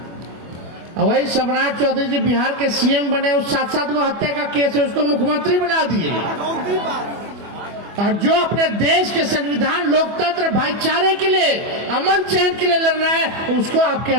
और वही सम्राट चौधरी जी बिहार के सीएम बने, उस 7-7 को हत्या का केस है, उसको मुख्यमंत्री बना दिए। और जो अपने देश के संविधान, लोकतंत्र, भाईचारे के लिए, अमन चैन के लिए लड़ रहा है, उसको आप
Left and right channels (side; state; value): left; late; 24 ms